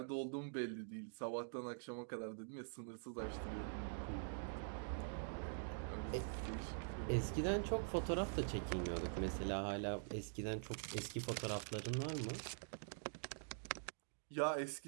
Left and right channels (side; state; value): left; silent; digital silence